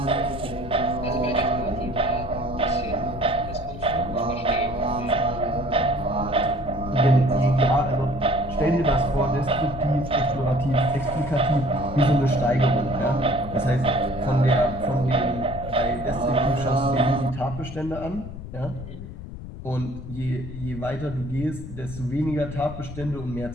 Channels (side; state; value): left; noise; rumble, 11 dB below the sound